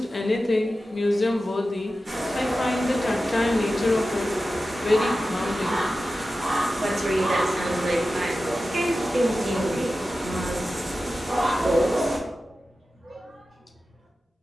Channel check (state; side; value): normal; both; correlation 0.93